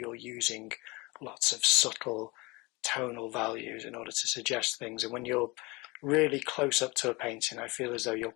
using lots of subtle tonal values in order to suggest things. And when you're really close up to a painting, I feel as though you're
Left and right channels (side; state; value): right; quieter; 24.8 dB